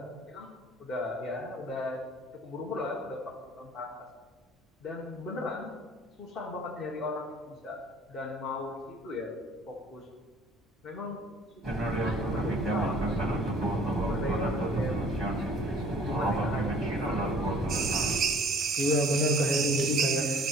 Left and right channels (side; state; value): both; normal; correlation 0.53